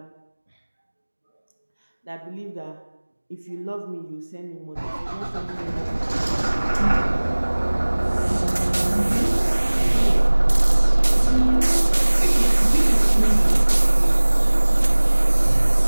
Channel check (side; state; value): both; inverted; correlation -1.00